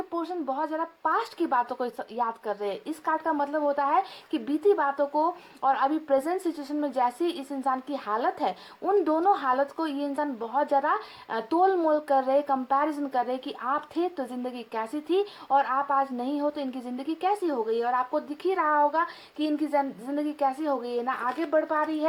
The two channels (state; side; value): identical; both; correlation 1.00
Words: पोर्शन बहुत ज़्यादा पास्ट की बातों को याद कर रहे हैं। इस कार्ड का मतलब होता है कि बीती बातों को और अभी प्रेजेंट सिचुएशन में जैसी इस इंसान की हालत है, उन दोनों हालत को ये इंसान बहुत ज़्यादा तोल मोल कर रहे, कंपैरिजन कर रहे कि आप थे तो ज़िंदगी कैसी थी और आप आज नहीं हो तो इनकी ज़िंदगी कैसी हो गई। और आपको दिख ही रहा होगा कि इनकी ज़िंदगी कैसी हो गई है, ना आगे बढ़ पा रही